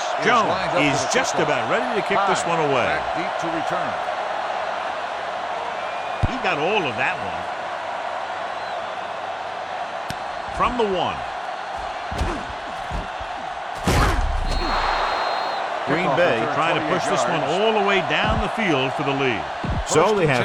Jones is just about ready to kick this one away. Back deep to return. He got all of that one. From the 1. Green Bay trying to push this one all the way down the field for the lead. So they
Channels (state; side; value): identical; both; correlation 1.00